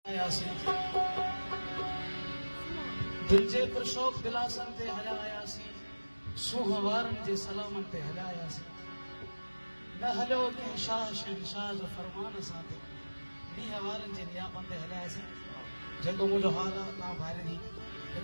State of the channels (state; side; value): inverted; both; correlation -1.00